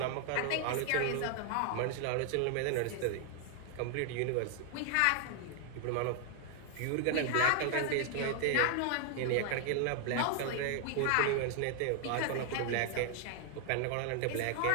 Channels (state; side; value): different; both; correlation 0.00